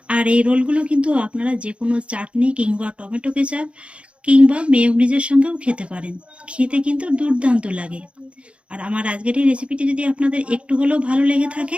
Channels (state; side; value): late; left; 0.060 ms